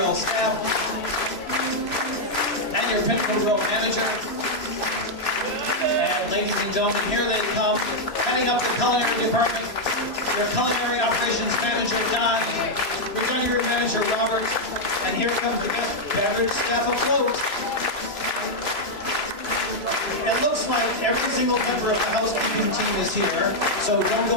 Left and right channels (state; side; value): late; right; 3.0 ms